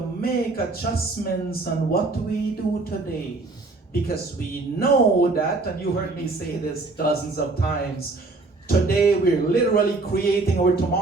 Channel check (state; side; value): quieter; left; 3.4 dB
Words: adjustments on what we do today. Because we know that, and you heard me say this dozens of times, today we're literally creating our